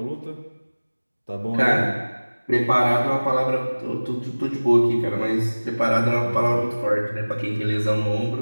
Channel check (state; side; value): inverted; both; correlation -1.00